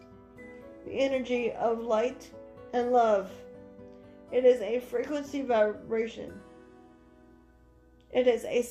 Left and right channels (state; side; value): identical; both; correlation 1.00